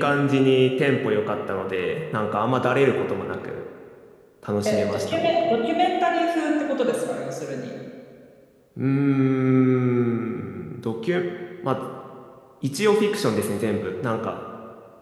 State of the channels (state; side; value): identical; both; correlation 1.00